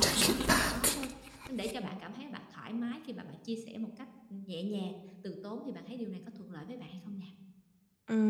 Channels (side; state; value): both; identical; correlation 1.00